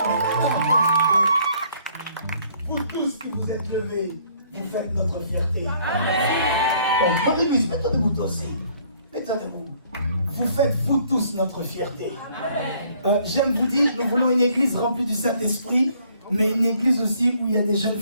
Vous tous qui vous êtes levés, vous faites notre fierté. Amen. Bonne église, mets-toi debout toi aussi. Mets-toi debout. Vous faites vous tous notre fierté. J'aime vous dire, nous voulons une église remplie du Saint-Esprit, mais une église aussi où il y a des jeunes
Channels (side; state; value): both; inverted; correlation -0.62